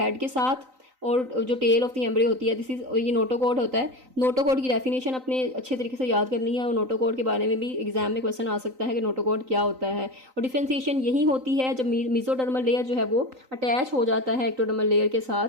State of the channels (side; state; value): left; late; 3.9 ms